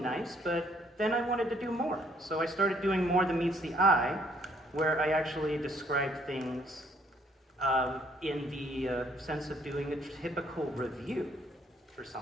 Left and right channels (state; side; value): normal; both; correlation 0.65